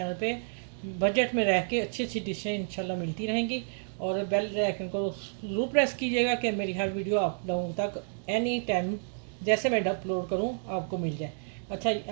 पे बजट में रह के अच्छी अच्छी डिशें इंशाल्लाह मिलती रहेंगी। और बेल आइकन को ज़रूर प्रेस कीजिएगा कि मेरी हर वीडियो आप लोगों तक एनी टाइम जैसे मैं अपलोड करूं आपको मिल जाए। अच्छा,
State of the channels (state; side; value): silent; left; digital silence